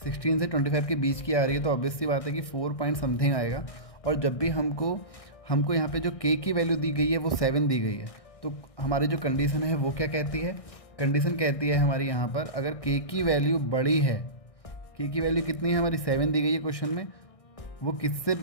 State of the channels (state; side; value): late; right; 1.6 ms